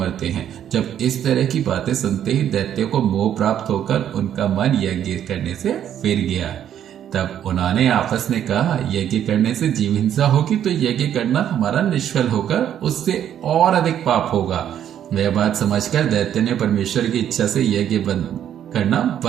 हैं। जब इस तरह की बातें सुनते ही दैत्य को मोह प्राप्त होकर उनका मन यज्ञ करने से फिर गया। तब उन्होंने आपस में कहा, यज्ञ करने से जीव हिंसा होगी तो यज्ञ करना हमारा निष्फल होकर उससे और अधिक पाप होगा। वह बात समझकर दैत्य ने परमेश्वर की इच्छा से यज्ञ करना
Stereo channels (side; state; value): left; quieter; 10.1 dB